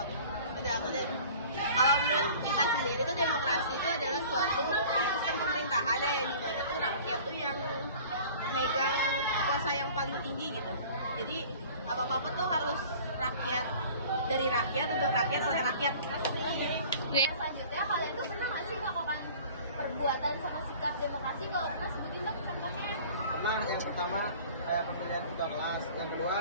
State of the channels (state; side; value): inverted; both; correlation -0.46